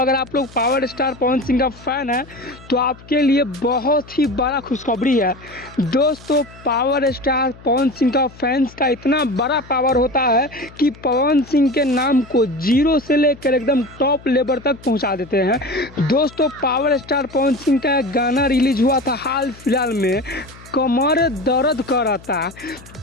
आप लोग पावर स्टार पवन सिंह का फैन है तो आपके लिए बहुत ही बड़ा खुशखबरी है। दोस्तों पावर स्टार पवन सिंह का फैंस का इतना बड़ा पावर होता है कि पवन सिंह के नाम को जीरो से लेकर एकदम टॉप लेवल तक पहुंचा देते हैं। दोस्तों पावर स्टार पवन सिंह का एक गाना रिलीज हुआ था हाल फिलहाल में, कमर दर्द कराता।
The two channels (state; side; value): noise; left; hum, 21 dB below the sound